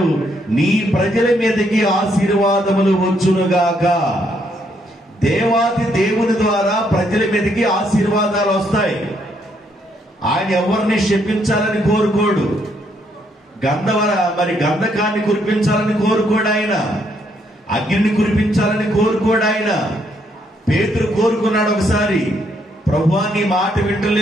నీ ప్రజల మీదకి ఆశీర్వాదములు వచ్చునుగాక. దేవాది దేవుని ద్వారా ప్రజల మీదకి ఆశీర్వాదాలు వస్తాయి. ఆయన ఎవరిని శపించాలని కోరుకోడు. గంధకాన్ని కురిపించాలని కోరుకోడు ఆయన. అగ్నిని కురిపించాలని కోరుకోడు ఆయన. పేతురు కోరుకున్నాడు ఒకసారి, ప్రభువా నీ మాట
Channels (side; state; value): both; normal; correlation 0.73